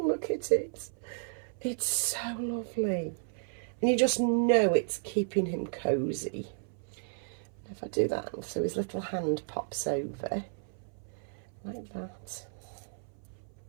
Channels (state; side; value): silent; left; 56 dB below the other